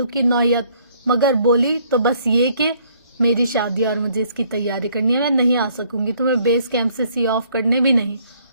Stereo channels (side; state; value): both; inverted; correlation -0.64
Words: کی نوعیت، مگر بولی تو بس یہ کہ میری شادی اور مجھے اس کی تیاری کرنی ہے، میں نہیں آ سکوں گی، تمہیں بیس کیمپ سے سی آف کرنے بھی نہیں۔